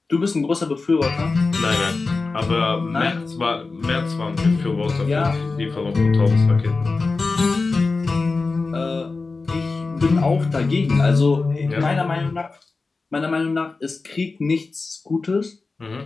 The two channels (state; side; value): quieter; right; 3.9 dB